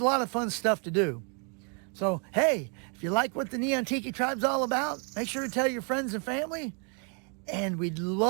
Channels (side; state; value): left; quieter; 38.8 dB